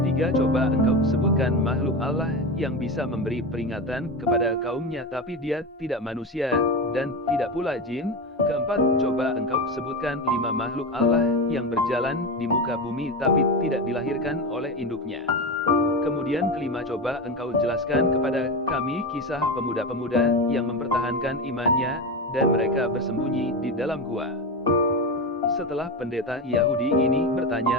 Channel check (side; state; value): both; normal; correlation 0.20